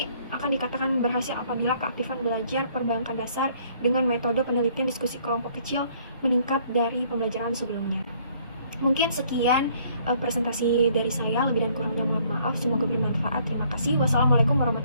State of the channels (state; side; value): inverted; both; correlation -0.62